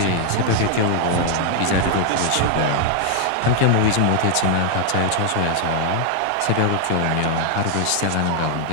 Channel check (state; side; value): different; both; correlation 0.00